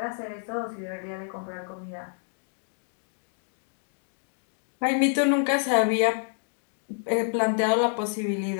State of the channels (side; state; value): right; silent; 55 dB below the other